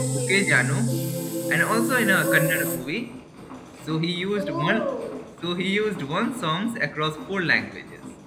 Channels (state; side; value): identical; both; correlation 1.00